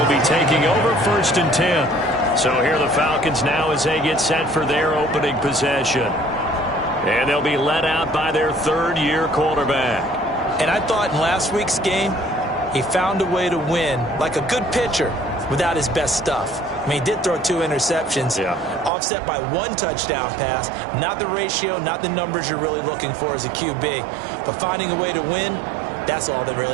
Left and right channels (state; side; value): drops out; left; at 18.9 s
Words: be taking over 1st and 10. So here are the Falcons now as they get set for their opening possession. And they'll be led out by their 3rd-year quarterback. And I thought in last week's game, he found a way to win like a good pitcher without his best stuff. I mean, he did throw 2 interceptions, offset by 1 touchdown pass. Not the ratio, not the numbers you're really looking for as a QB. But finding a way to win, that's all that